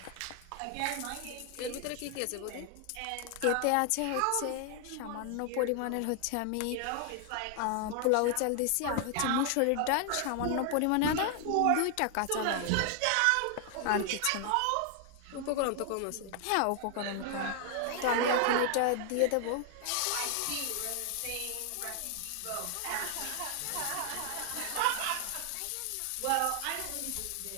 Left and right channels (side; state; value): both; different; correlation 0.00